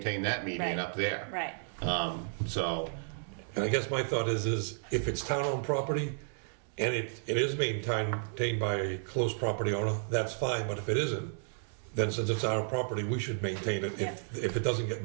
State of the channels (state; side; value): silent; left; digital silence